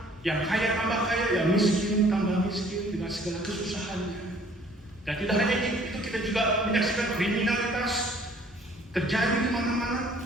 yang kaya tambah kaya, yang miskin tambah miskin dengan segala kesusahannya. Dan tidak hanya itu, kita juga menyaksikan kriminalitas terjadi di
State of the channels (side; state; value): both; normal; correlation 0.57